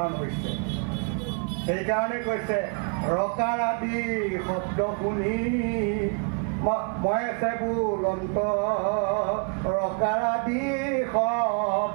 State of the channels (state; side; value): quieter; left; 38.3 dB